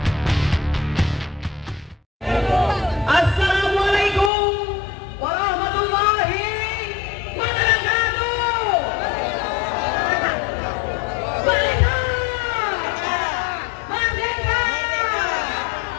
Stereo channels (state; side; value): drops out; right; at 4.3 s